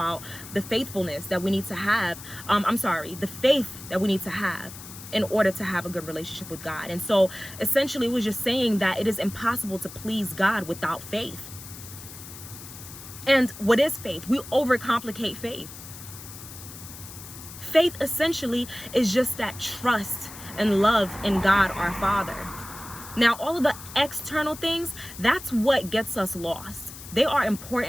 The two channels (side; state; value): left; noise; hiss, 14 dB below the sound